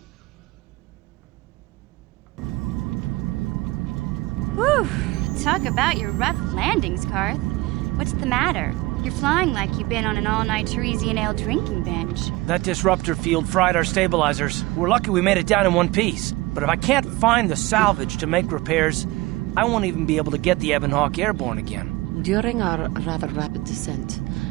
Talk about your rough landings, Karth. What's the matter? You're flying like you've been on an all-night Teresian ale drinking binge. That disruptor field fried our stabilizers. We're lucky we made it down in one piece. But if I can't find the salvage to make repairs, I won't even be able to get the Ebonhawk airborne again. During our rather rapid descent,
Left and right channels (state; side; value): quieter; left; 20.3 dB